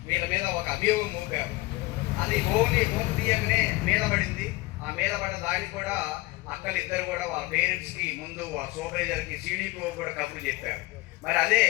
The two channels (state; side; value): quieter; right; 21.1 dB